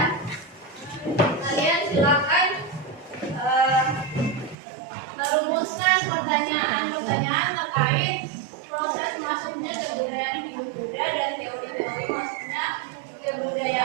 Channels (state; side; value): drops out; left; at 4.5 s